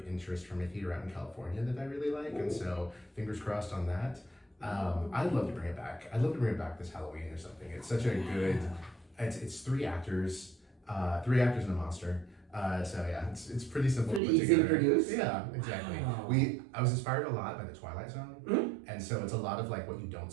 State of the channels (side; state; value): left; drops out; at 14.2 s